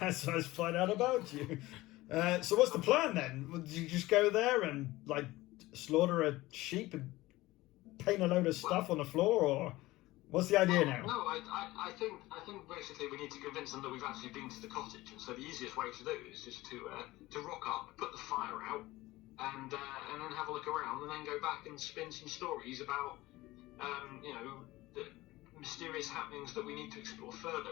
I find out about you. So what's the plan then? Would you just go there and like slaughter a sheep and paint a load of stuff on the floor, or what's the idea now? No, I think basically we need to convince them that we've actually been to the cottage, and so the easiest way to do it is just to rock up, put the fire out, and then have a look around, and then go back and spin some stories about the mysterious happenings that we need to explore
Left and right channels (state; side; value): quieter; right; 18.7 dB